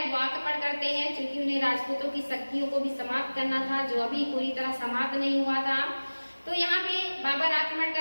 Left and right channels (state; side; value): inverted; both; correlation -1.00